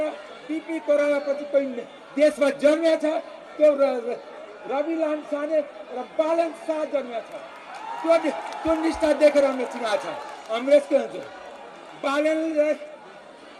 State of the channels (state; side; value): identical; both; correlation 1.00